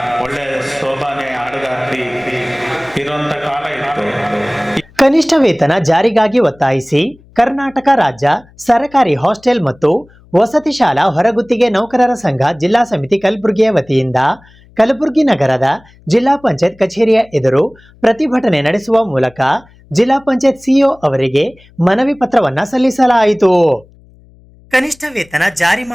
ಒಳ್ಳೆ ಸೋಬಾನೆ ಹಾಡುಗಾರ್ತಿ ಇರುವಂತ ಕಾಲ ಇತ್ತು. ಕನಿಷ್ಠ ವೇತನ ಜಾರಿಗಾಗಿ ಒತ್ತಾಯಿಸಿ ಕರ್ನಾಟಕ ರಾಜ್ಯ ಸರಕಾರಿ ಹಾಸ್ಟೆಲ್ ಮತ್ತು ವಸತಿ ಶಾಲಾ ಹೊರಗುತ್ತಿಗೆ ನೌಕರರ ಸಂಘ ಜಿಲ್ಲಾ ಸಮಿತಿ ಕಲಬುರಗಿಯ ವತಿಯಿಂದ ಕಲಬುರಗಿ ನಗರದ ಜಿಲ್ಲಾ ಪಂಚಾಯತ್ ಕಚೇರಿಯ ಎದುರು ಪ್ರತಿಭಟನೆ ನಡೆಸುವ ಮೂಲಕ ಜಿಲ್ಲಾ ಪಂಚಾಯತ್ ಸಿಇಒ ಅವರಿಗೆ ಮನವಿ ಪತ್ರವನ್ನ ಸಲ್ಲಿಸಲಾಯಿತು. ಕನಿಷ್ಠ ವೇತನ ಜಾರಿ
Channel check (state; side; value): noise; left; hum, 27 dB below the sound